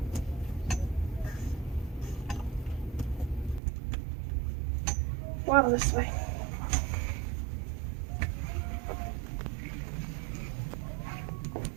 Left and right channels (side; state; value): left; drops out; at 3.6 s